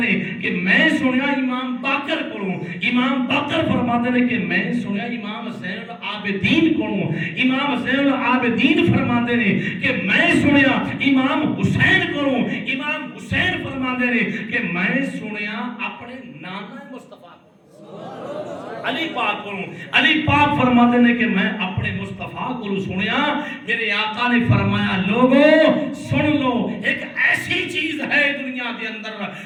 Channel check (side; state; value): both; identical; correlation 1.00